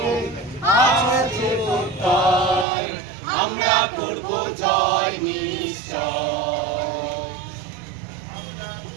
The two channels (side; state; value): left; drops out; at 2.7 s